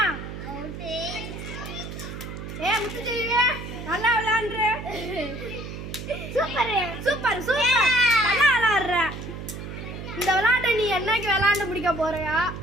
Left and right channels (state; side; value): noise; right; hum, 9 dB below the sound